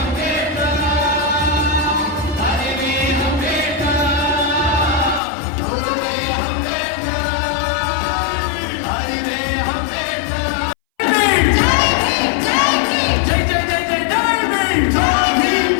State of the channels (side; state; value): right; drops out; at 5.2 s